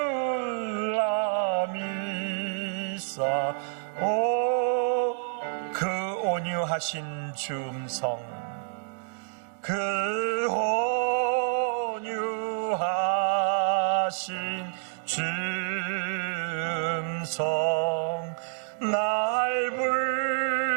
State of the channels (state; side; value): silent; left; digital silence